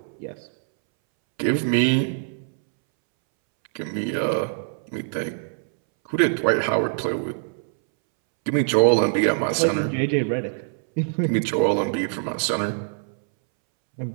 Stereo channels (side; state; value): left; silent; 63 dB below the other